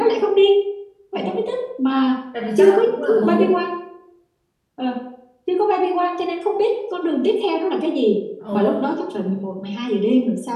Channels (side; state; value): both; identical; correlation 1.00